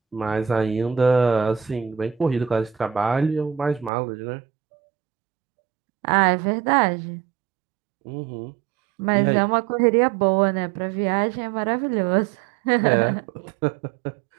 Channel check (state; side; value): drops out; left; at 3.9 s